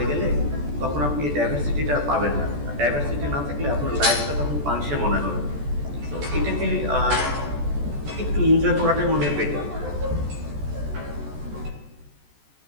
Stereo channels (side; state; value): left; late; 14 ms